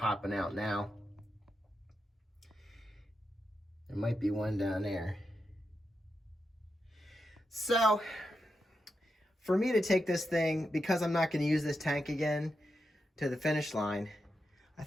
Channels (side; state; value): both; normal; correlation 0.87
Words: out now. There might be one down there. So, for me to take this thing, because I'm not going to use this tank again, to the finish line, I